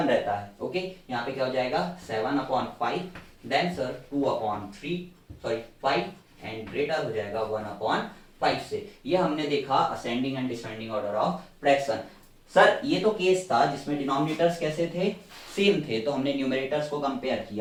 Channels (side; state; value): both; identical; correlation 1.00